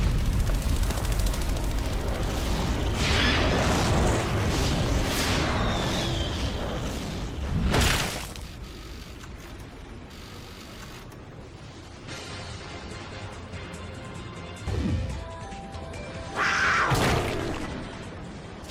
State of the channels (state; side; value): identical; both; correlation 1.00